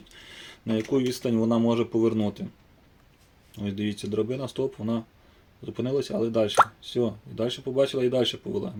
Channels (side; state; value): both; identical; correlation 1.00